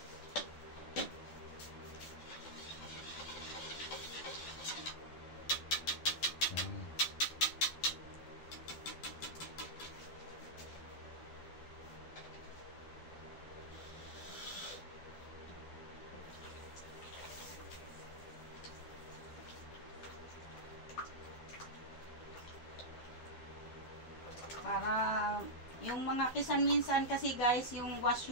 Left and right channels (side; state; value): right; late; 12 ms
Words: Para yung mga kisan minsan kasi guys, yung wash